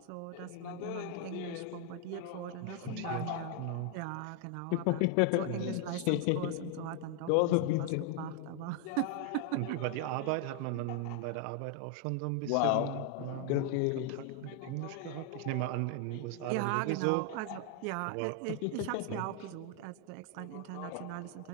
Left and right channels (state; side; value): different; both; correlation 0.00